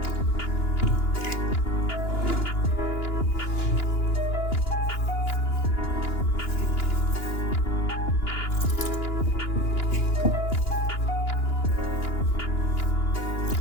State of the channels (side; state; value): right; late; 2.9 ms